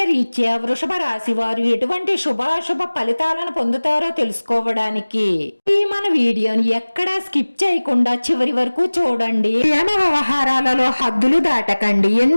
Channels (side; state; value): both; inverted; correlation -1.00